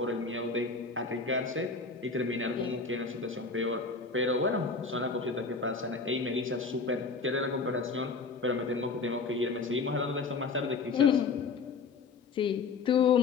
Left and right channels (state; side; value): quieter; right; 4.5 dB